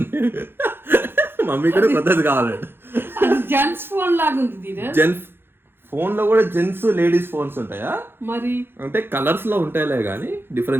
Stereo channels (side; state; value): left; late; 0.10 ms